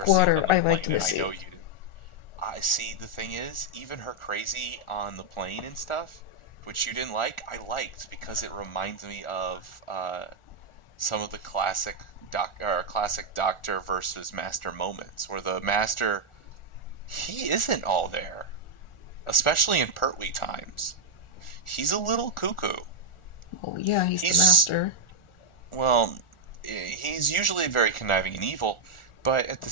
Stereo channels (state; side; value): late; right; 1.4 ms